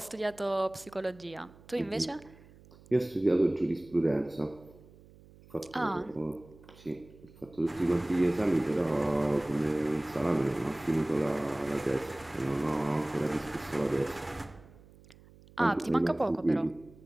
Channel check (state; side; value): noise; right; hum, 24 dB below the sound